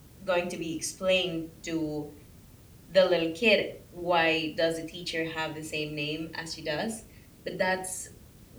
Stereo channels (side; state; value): both; identical; correlation 1.00